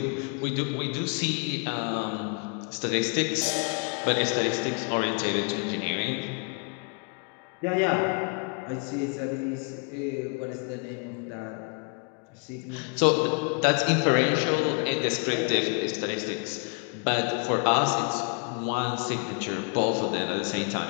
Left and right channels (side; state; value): right; quieter; 35.9 dB